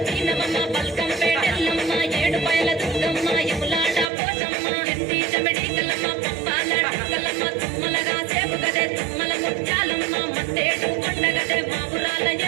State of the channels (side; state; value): left; drops out; at 4.0 s